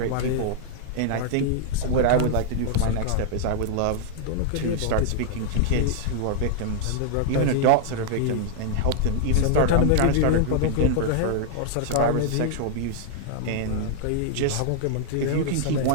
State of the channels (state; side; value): different; both; correlation -0.01